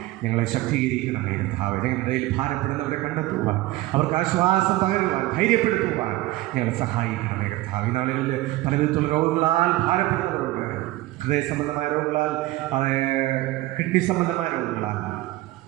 ഞങ്ങളെ ശക്തീകരിക്കണമേ കർത്താവേ. ഞങ്ങളുടെ ഭാരപ്പെടുന്നവരെ കണ്ടെത്തുവാൻ, അവർക്ക് ആശ്വാസം പകരുവാൻ, ധൈര്യപ്പെടുത്തുവാൻ ഞങ്ങളെ സഹായിക്കണമേ കർത്താവേ. ഈ നാളുകളിൽ പല വിധത്തിലുള്ള രോഗങ്ങളാൽ ഭാരപ്പെടുന്നവരുണ്ട്. ഹൃദയ സംബന്ധമായ രോഗങ്ങളാൽ, കിഡ്നി സംബന്ധമായ രോഗങ്ങളാൽ,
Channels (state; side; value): quieter; left; 17.9 dB